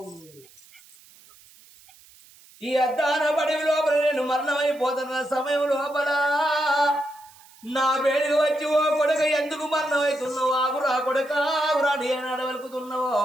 ఈ అద్దాన పడి లోపల నేను మరణమైపోతున్న సమయం లోపల నా వేడికి వచ్చి ఓ కొడుక ఎందుకు మరణమవుతున్నావు? ఆగురా కొడుక ఆగురా నేను అడవలుకుతున్నావు.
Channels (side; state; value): right; noise; hiss, 25 dB below the sound